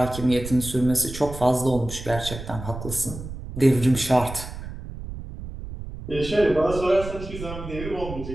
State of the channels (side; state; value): right; noise; rumble, 10 dB below the sound